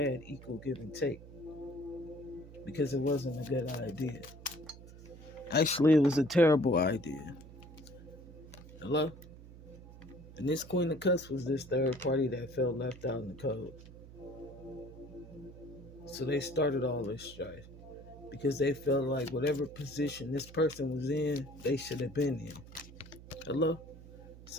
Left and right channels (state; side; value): noise; right; hum, 17 dB below the sound